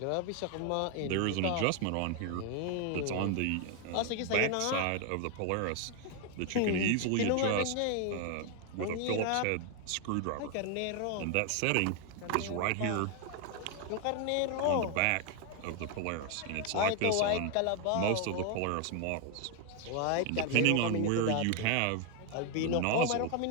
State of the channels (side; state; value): both; different; correlation 0.00